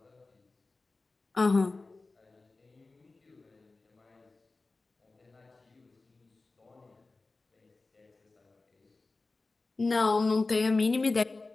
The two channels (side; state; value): right; quieter; 3.5 dB